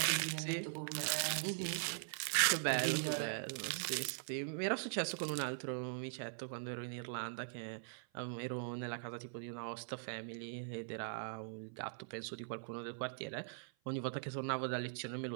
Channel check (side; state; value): left; silent; 50 dB below the other